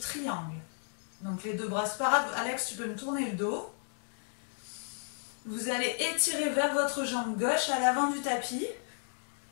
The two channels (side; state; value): right; silent; 56 dB below the other